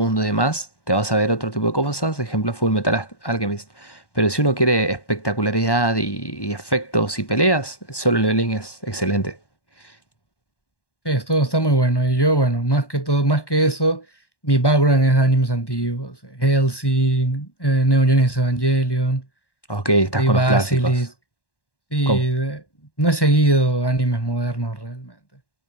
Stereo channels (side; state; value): right; late; 1.1 ms